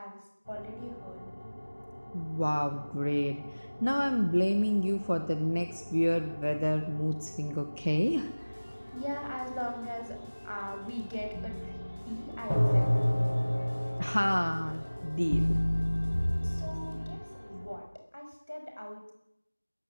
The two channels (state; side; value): inverted; both; correlation -1.00